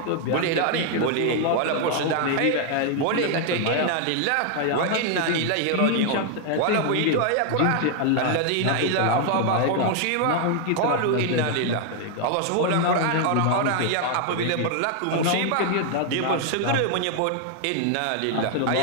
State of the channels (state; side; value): different; both; correlation 0.00